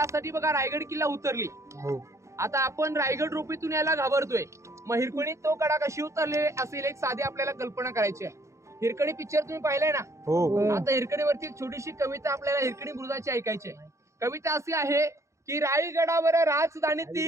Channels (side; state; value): left; late; 0.14 ms